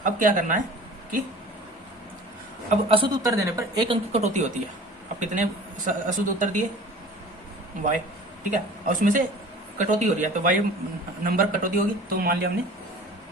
अब क्या करना है कि अब अशुद्ध उत्तर देने पर 1 अंक की कटौती होती है। अब कितने अशुद्ध उत्तर दिए y। ठीक है, और उसमें से कटौती हो रही है तो y नंबर कटौती होगी, तो मान लिया हमने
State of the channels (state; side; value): normal; both; correlation 0.44